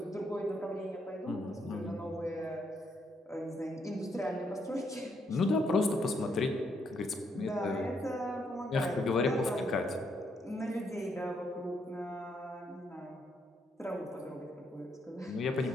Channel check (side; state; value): both; normal; correlation 0.75